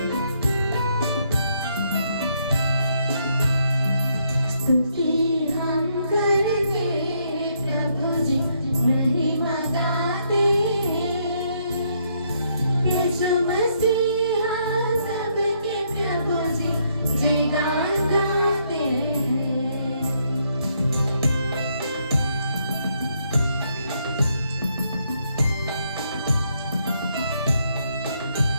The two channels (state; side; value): inverted; both; correlation -0.73